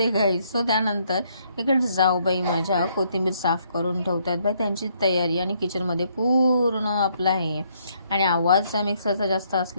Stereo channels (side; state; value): both; inverted; correlation -0.70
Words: गाईज. सो त्यानंतर इकडे जाऊबाई माझ्या कोथिंबीर साफ करून ठेवतात बाई, त्यांची तयारी आणि किचनमध्ये पूर्ण आपला आहे. आणि आवाज मिक्सरचा जास्त